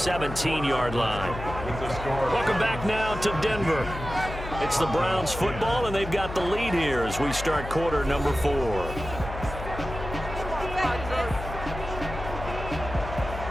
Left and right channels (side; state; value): left; noise; hum, 9 dB below the sound